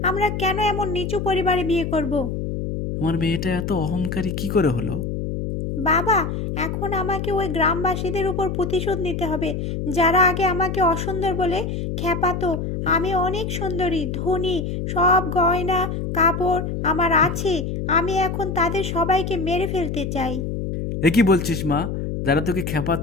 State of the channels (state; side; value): noise; left; hum, 3 dB below the sound